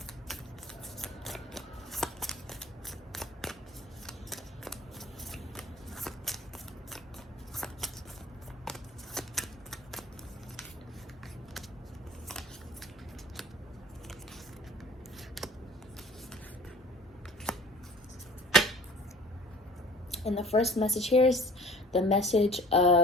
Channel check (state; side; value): normal; both; correlation 0.47